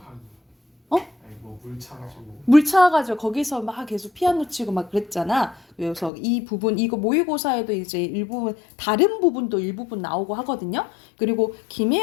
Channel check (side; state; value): right; drops out; at 6.1 s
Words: 물 차가지고. 물 차가지고 거기서 막 계속 피아노 치고 막 그랬잖아. 그래서 이 부분 이거 모의고사에도 이제 일부분 다른 부분도 일부분 나오고 하거든요. 그리고